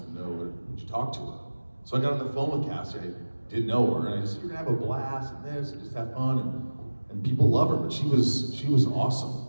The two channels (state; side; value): inverted; both; correlation -1.00